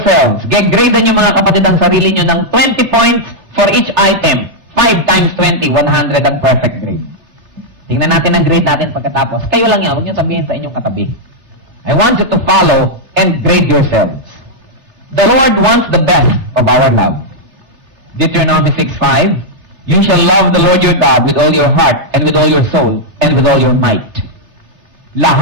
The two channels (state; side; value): late; left; 3.3 ms